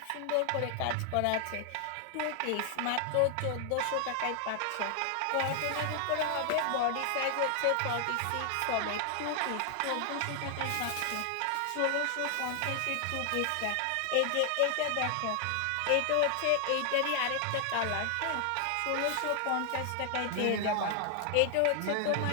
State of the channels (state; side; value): different; both; correlation 0.00